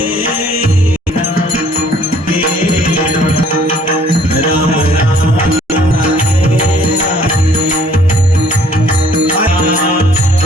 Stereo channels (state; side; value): normal; both; correlation 0.59